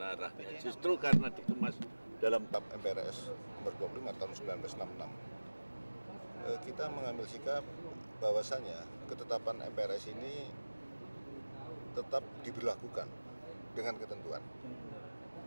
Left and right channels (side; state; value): both; inverted; correlation -1.00